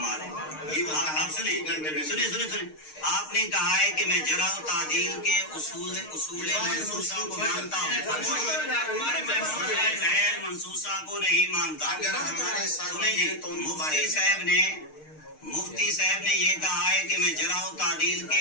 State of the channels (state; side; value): late; right; 6.5 ms